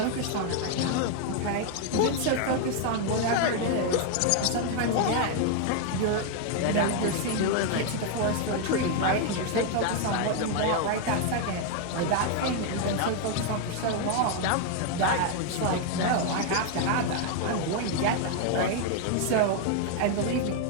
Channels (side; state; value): both; different; correlation 0.00